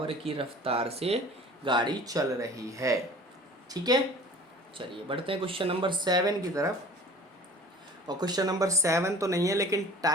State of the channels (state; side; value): normal; both; correlation 0.45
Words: की रफ्तार से गाड़ी चल रही है। ठीक है, चलिए बढ़ते हैं क्वेश्चन नंबर 7 की तरफ। और क्वेश्चन नंबर 7 तो नहीं है, लेकिन